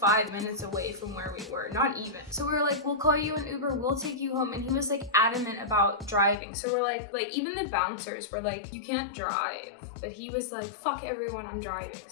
minutes away from where we were, not even. So we were like, we'll call you an Uber, we'll take you home, and he was like adamant about driving. So we're like even the bouncers were like, you can't drive. But he was like, fuck everyone, I'm driving.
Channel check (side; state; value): right; drops out; at 6.4 s